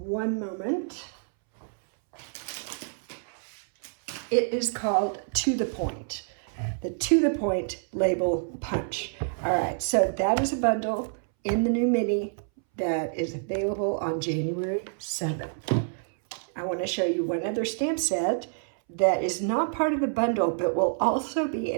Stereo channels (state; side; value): silent; left; 60 dB below the other